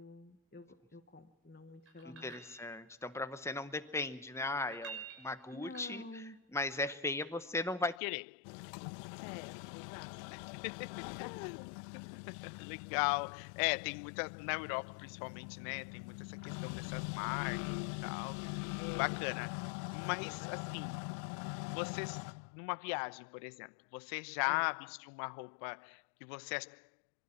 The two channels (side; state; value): right; drops out; at 8.0 s